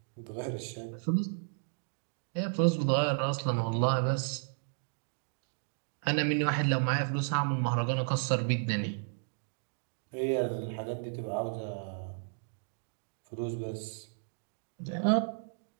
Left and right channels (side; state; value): left; silent; digital silence